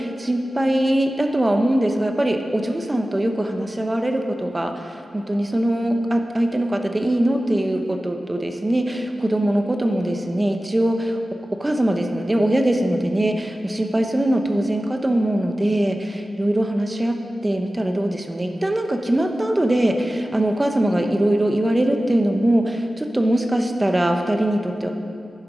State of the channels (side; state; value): both; normal; correlation 0.95